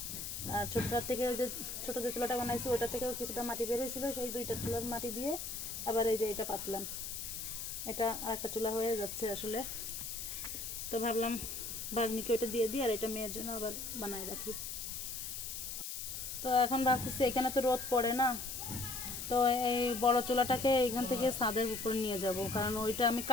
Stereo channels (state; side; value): noise; left; hiss, 6 dB below the sound